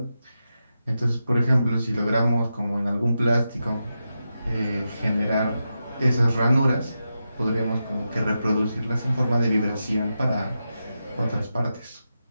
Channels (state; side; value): inverted; both; correlation -0.89